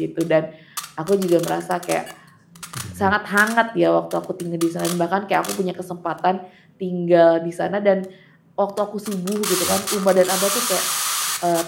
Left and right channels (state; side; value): identical; both; correlation 1.00